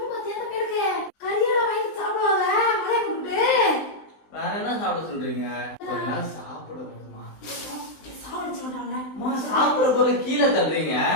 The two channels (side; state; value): right; late; 20 ms